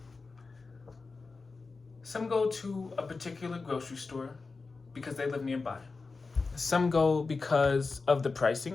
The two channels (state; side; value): quieter; right; 4.1 dB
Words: Some go to a particular grocery store because they live nearby. Some go because of the